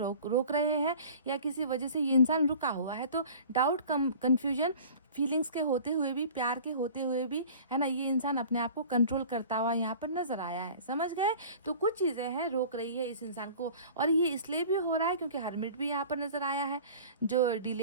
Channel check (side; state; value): both; inverted; correlation -0.43